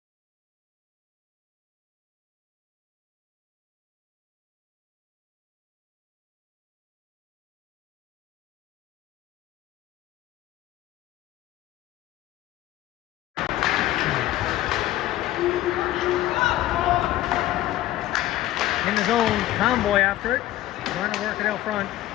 In the zone, Tomboy after it, trying to work it out front.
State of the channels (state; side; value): quieter; right; 14.9 dB